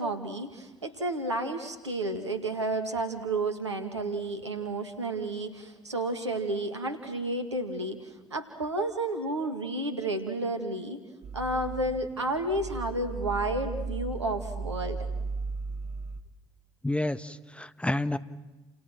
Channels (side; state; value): both; normal; correlation 0.28